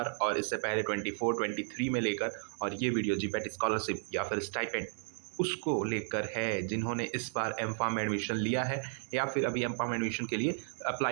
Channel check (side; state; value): left; silent; digital silence